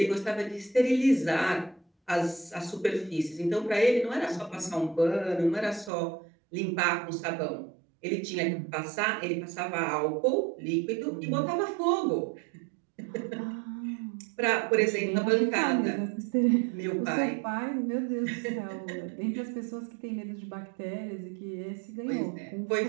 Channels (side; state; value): left; drops out; at 5.9 s